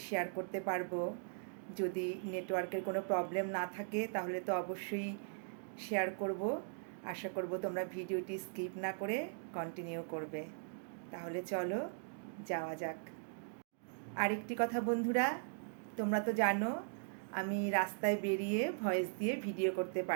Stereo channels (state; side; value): silent; left; digital silence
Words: শেয়ার করতে পারবো। যদি নেটওয়ার্কের কোনো প্রবলেম না থাকে তাহলে তো অবশ্যই শেয়ার করব। আশা করব তোমরা ভিডিওটি স্কিপ না করে কন্টিনিউ করবে। তাহলে চলো যাওয়া যাক। আরেকটি কথা বন্ধুরা, তোমরা তো জানো আমি রাস্তায় বেরিয়ে ভয়েস দিয়ে ভিডিও করতে